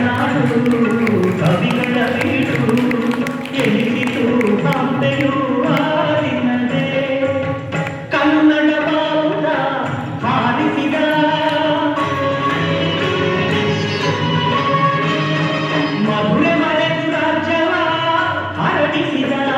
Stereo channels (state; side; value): identical; both; correlation 1.00